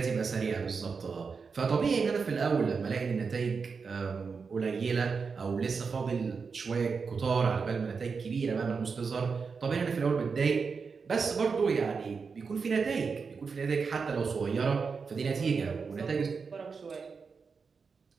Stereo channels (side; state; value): left; quieter; 5.2 dB